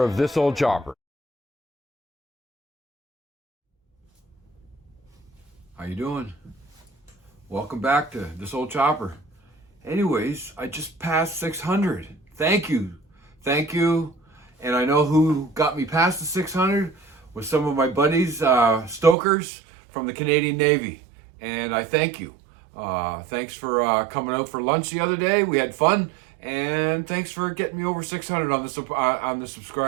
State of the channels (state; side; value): drops out; left; at 19.2 s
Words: of This Old Chopper. How you doing? Welcome back to This Old Chopper. Anyways, I just passed 600. Thank you. Thank you. And I know who got me past the 600 was some of my buddies, stokers from the Canadian Navy. And I thank you. Thanks for coming out for lunch the other day. We had fun. And thanks for getting me over 600 on the